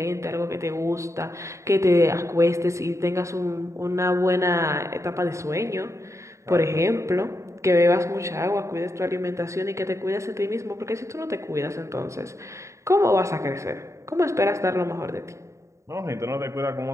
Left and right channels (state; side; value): late; left; 0.14 ms